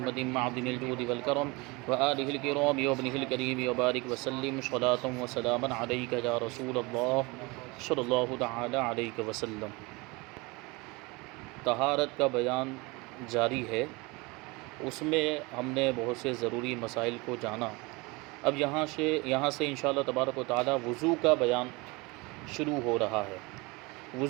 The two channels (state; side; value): quieter; left; 25.4 dB